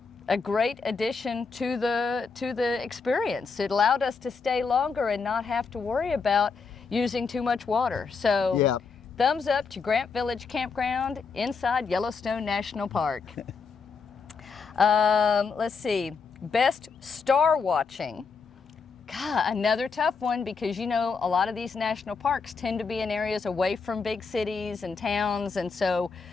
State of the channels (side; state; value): right; quieter; 5.1 dB